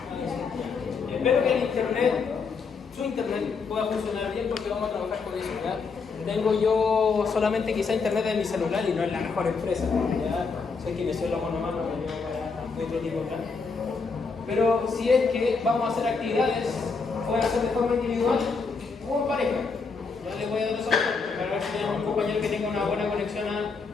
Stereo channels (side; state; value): right; quieter; 4.8 dB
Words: que el internet, su internet, pueda funcionar bien porque vamos a trabajar con eso. ¿Ya? Tengo yo solamente quizá internet en mi celular y no es la mejor empresa. ¿Ya? Soy kinesiólogo nomás, no me llevo para otro tipo de plan. Pero si es que vamos a hacer actividades, pueden hacer de forma individual o en pareja. Ya les voy a dar esa opción para ver si tenemos un compañero que tenga una buena conexión